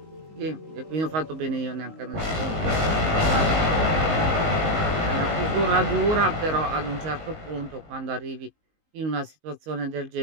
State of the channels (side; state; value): left; late; 19 ms